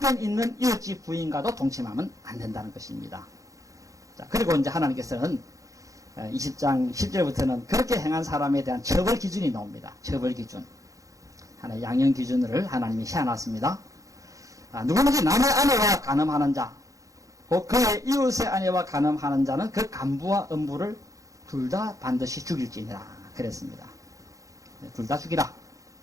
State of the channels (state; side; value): late; left; 0.16 ms